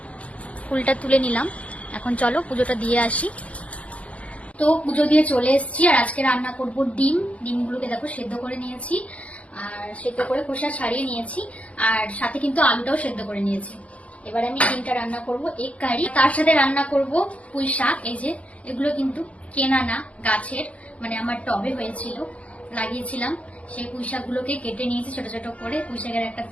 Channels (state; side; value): late; right; 0.065 ms